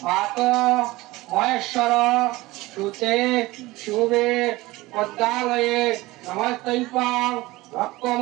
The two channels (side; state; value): left; quieter; 19.8 dB